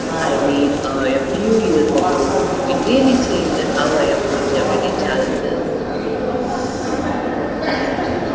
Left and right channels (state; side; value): identical; both; correlation 1.00